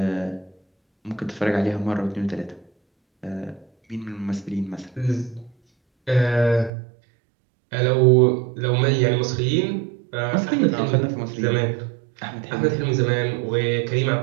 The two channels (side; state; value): left; drops out; at 6.7 s